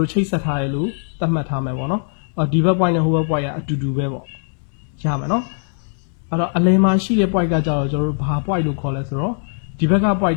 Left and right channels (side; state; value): right; silent; 64 dB below the other